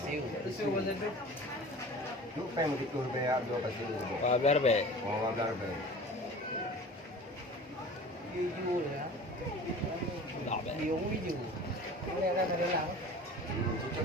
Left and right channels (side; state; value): both; normal; correlation 0.40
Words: Tisu macam tu. Lu pengen gitu bayar 2 pasir. Wah, biar baik. Oh, biar baik. Video ya. Tak baik. Video video. Boleh ada dalam. Cucuk